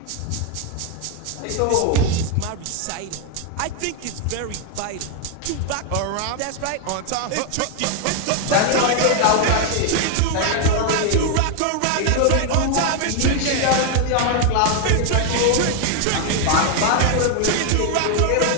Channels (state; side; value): different; both; correlation 0.00